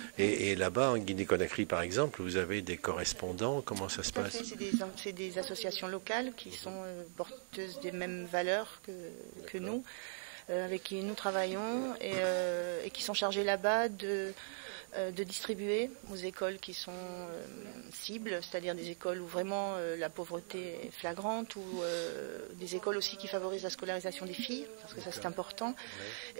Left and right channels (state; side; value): silent; left; digital silence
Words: Et là-bas, en Guinée-Conakry, par exemple, vous avez des correspondants, comment ça se passe ? C'est des associations locales qui sont porteuses des mêmes valeurs que nous, avec qui nous travaillons et qui sont chargées là-bas de distribuer aux écoles qui sont cibles, c'est-à-dire des écoles où vraiment la pauvreté est flagrante, ou des écoles aussi qui favorisent la scolarisation des filles, parce que ça c'est important.